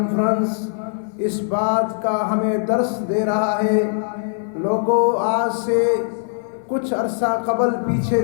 اس بات کا ہمیں درس دے رہا ہے۔ لوگوں، آج سے کچھ عرصہ قبل پیچھے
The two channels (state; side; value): silent; right; 63 dB below the other